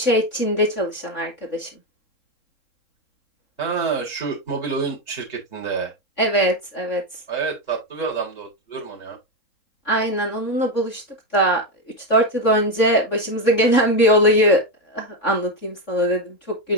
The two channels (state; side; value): late; right; 3.5 ms